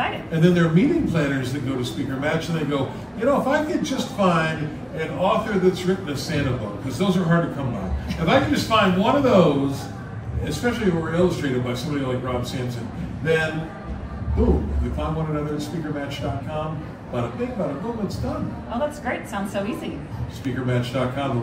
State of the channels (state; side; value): identical; both; correlation 1.00